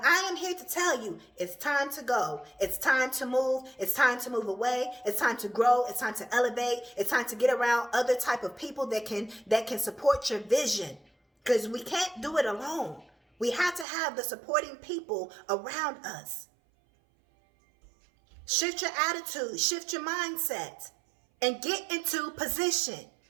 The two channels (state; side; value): drops out; left; at 13.9 s